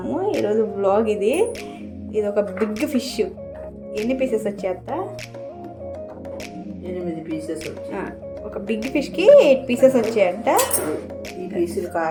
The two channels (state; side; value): identical; both; correlation 1.00